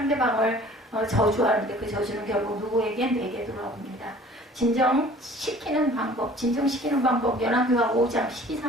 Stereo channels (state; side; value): normal; both; correlation 0.49